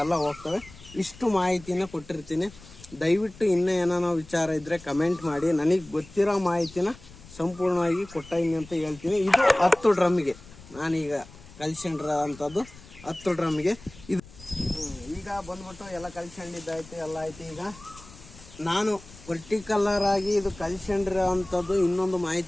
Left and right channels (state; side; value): noise; left; rumble, 20 dB below the sound